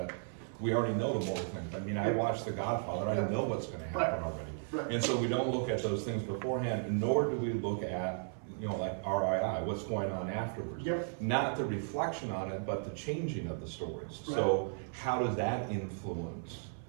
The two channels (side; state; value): left; silent; 54 dB below the other